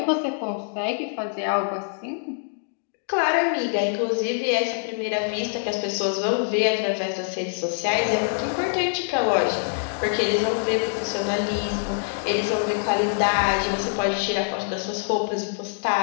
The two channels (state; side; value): silent; right; digital silence